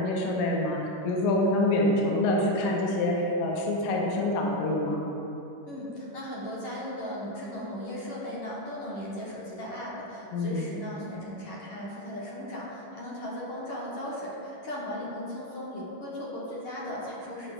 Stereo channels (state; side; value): late; right; 11 ms